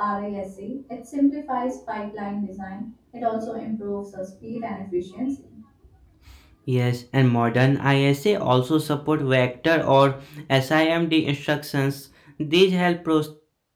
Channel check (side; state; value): both; identical; correlation 1.00